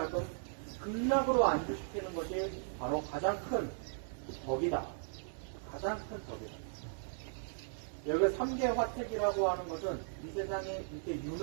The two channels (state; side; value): silent; left; 53 dB below the other